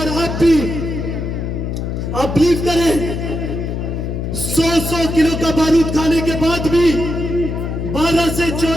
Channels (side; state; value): left; noise; hum, 3 dB below the sound